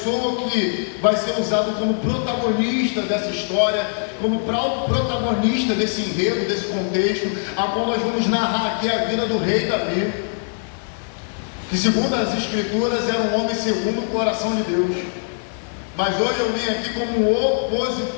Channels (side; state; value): right; silent; digital silence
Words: que vai ser usado como protagonista dessa história, como protagonista desse enredo, desse contexto, a qual nós vamos narrar aqui a vida do rei Davi, que segundo as Escrituras era um homem segundo o coração de Deus. Mas hoje eu vim aqui como